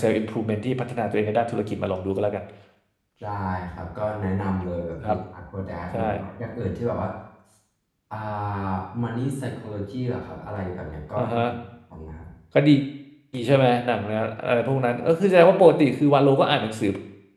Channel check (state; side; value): identical; both; correlation 1.00